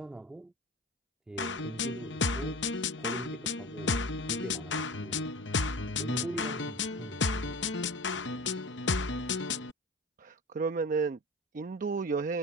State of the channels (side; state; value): both; normal; correlation 0.35